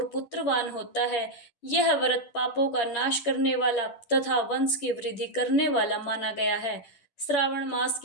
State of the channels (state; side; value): late; right; 10 ms